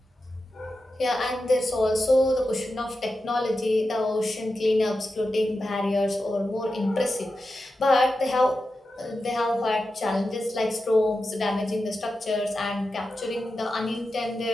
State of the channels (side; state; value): both; normal; correlation 0.91